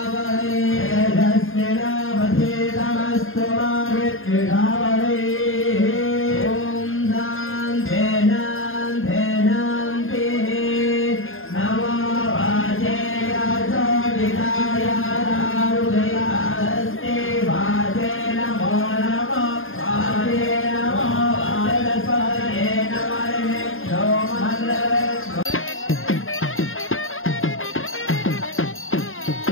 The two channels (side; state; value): right; late; 0.59 ms